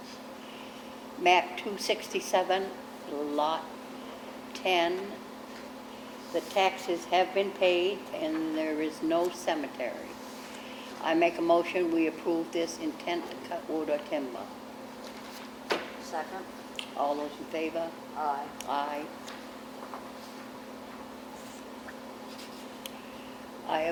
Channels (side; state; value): both; identical; correlation 1.00